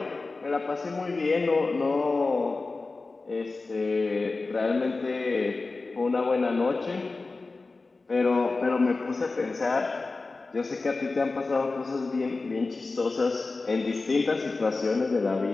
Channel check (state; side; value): quieter; right; 3.7 dB